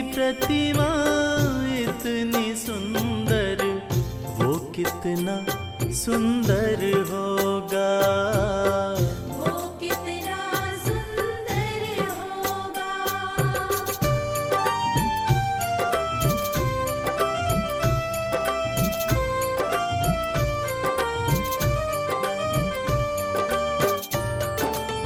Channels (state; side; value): identical; both; correlation 1.00